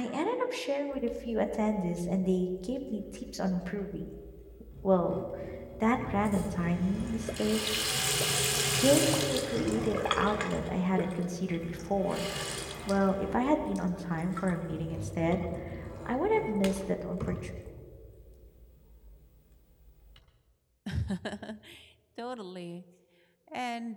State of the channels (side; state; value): both; identical; correlation 1.00